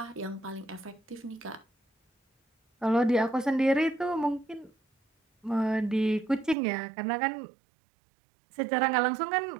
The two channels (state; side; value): drops out; left; at 6.6 s